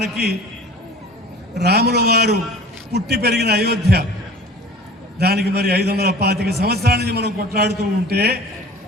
రాముల వారు పుట్టి పెరిగిన అయోధ్య, దానికి మరి 525 సంవత్సరాల నుంచి మనం కొట్లాడుతూ ఉంటే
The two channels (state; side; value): normal; both; correlation 0.42